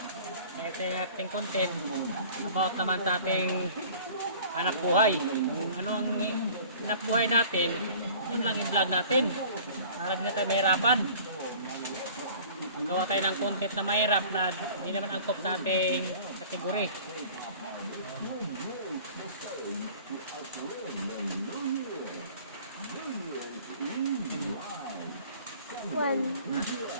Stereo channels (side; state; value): both; inverted; correlation -0.47